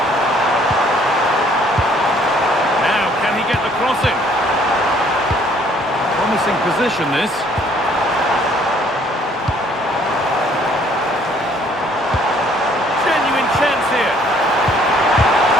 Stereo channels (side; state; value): both; normal; correlation 0.61